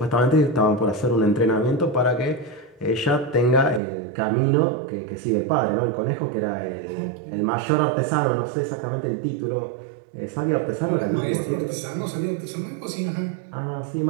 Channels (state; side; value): drops out; left; at 3.8 s